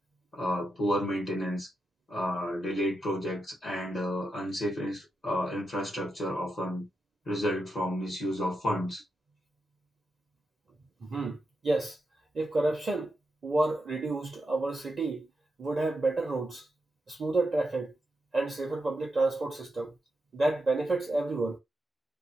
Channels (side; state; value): both; normal; correlation 0.86